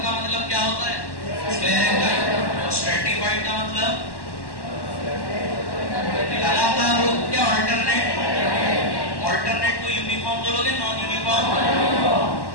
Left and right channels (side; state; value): right; late; 1.1 ms